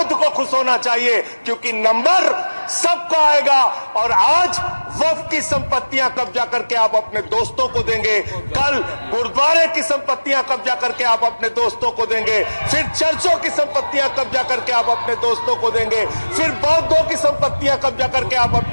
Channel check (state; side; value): inverted; both; correlation -1.00